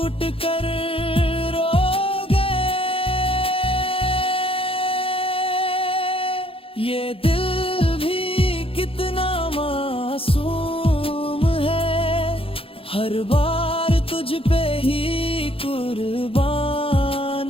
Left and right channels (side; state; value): right; late; 0.27 ms